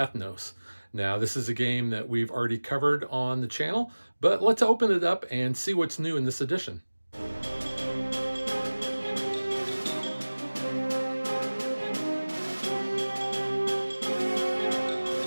Now, this is a game that we've already covered on the channel, but let's open it up and see what's new in this edition.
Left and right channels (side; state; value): both; inverted; correlation -1.00